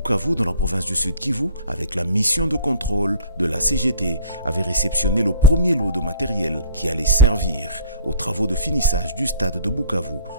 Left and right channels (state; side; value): inverted; both; correlation -0.48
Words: dans la province du Sud Kivu, avec la mission de contrôle de la CGT, avait réceptionné le premier lot de matériel qui allait servir aux travaux de finissage du stade de Bukavu